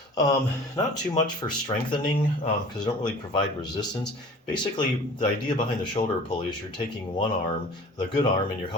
Not too much for strengthening because they don't really provide resistance. Basically, the idea behind the shoulder pulley is you're taking one arm, the good arm, and you're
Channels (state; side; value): normal; both; correlation 0.44